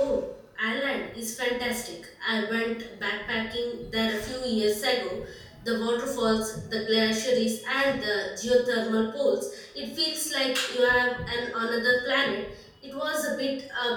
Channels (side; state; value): both; identical; correlation 1.00